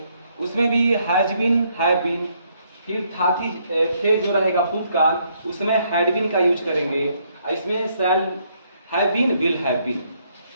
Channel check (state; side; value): inverted; both; correlation -0.71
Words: उसमें भी हैज बीन, हैव बीन, फिर था थी थे जो रहेगा भूतकाल, उसमें हैड बीन का यूज करेंगे। इसमें shall have been, will have been,